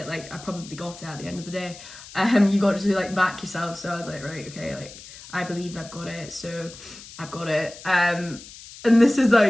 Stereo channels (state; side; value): noise; left; hiss, 17 dB below the sound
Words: Like I probably got it at the end of the day. You got to like back yourself. So I was like, right, okay, like I believe I've got it. So I've got it. And this is